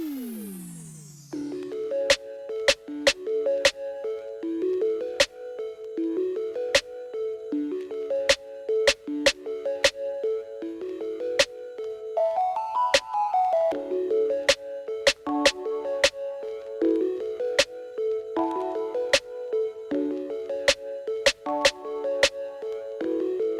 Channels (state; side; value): identical; both; correlation 1.00